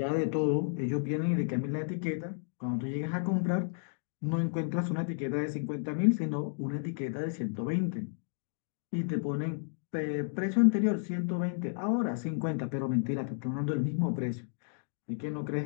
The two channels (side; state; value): right; silent; digital silence